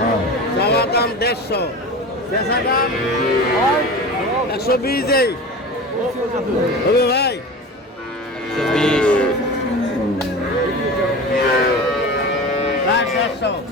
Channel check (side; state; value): both; normal; correlation 0.32